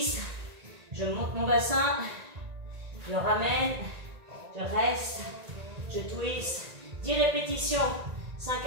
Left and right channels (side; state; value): left; late; 1.9 ms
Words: Je monte mon bassin. Je ramène. Je reste. Je twist. 10 répétitions. 5